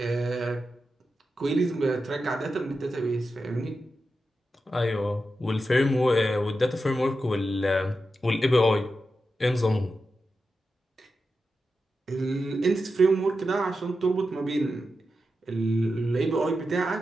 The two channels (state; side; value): normal; both; correlation 0.90